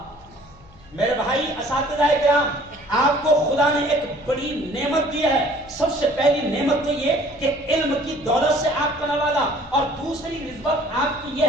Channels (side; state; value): left; noise; hum, 25 dB below the sound